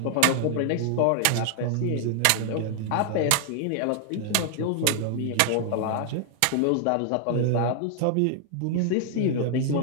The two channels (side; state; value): both; different; correlation 0.00